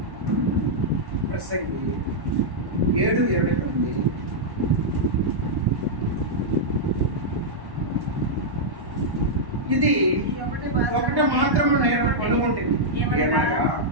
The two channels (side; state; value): left; late; 1.1 ms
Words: ప్రసంగి 7:29 ఇది ఒకటి మాత్రం నేను కనుగొంటుంది,